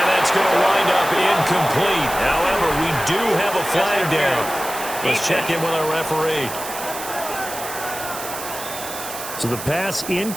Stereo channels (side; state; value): right; noise; hiss, 9 dB below the sound